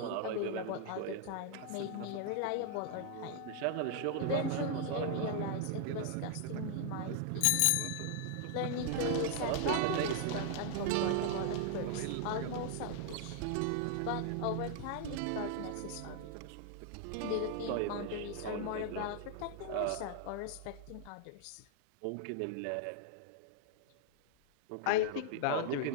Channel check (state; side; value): different; both; correlation 0.00